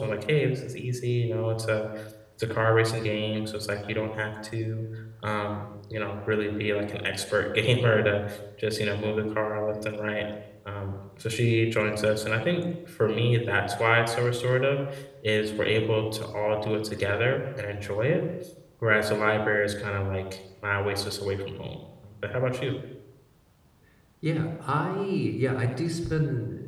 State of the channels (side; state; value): both; identical; correlation 1.00